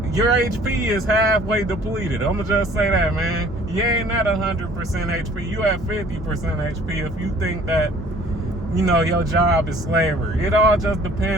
your HP is halfway depleted. I'm gonna just say that, man. You ain't at 100% HP. You at 50% HP if you think that, your job is slavery. It all just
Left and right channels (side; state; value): both; normal; correlation 0.54